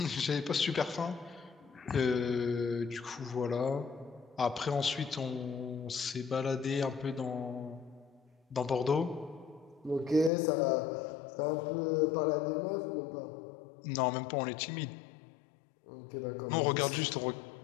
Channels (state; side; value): drops out; right; at 10.3 s